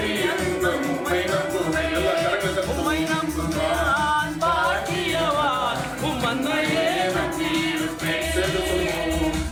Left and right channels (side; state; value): both; identical; correlation 1.00